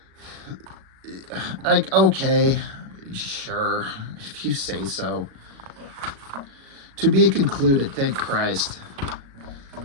Like, okay, sure, if you say so. To be concluded, thank Christ.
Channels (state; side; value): late; left; 36 ms